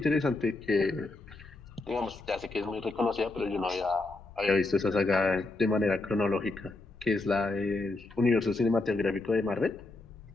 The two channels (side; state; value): right; quieter; 3.1 dB